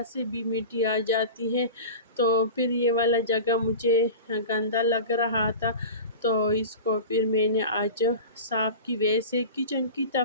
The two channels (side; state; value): both; inverted; correlation -0.33